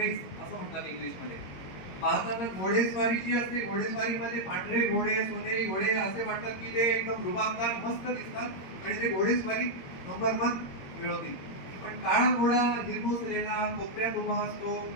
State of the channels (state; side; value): late; right; 21 ms